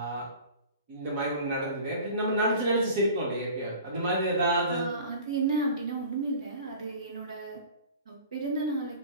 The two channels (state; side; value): inverted; both; correlation -0.42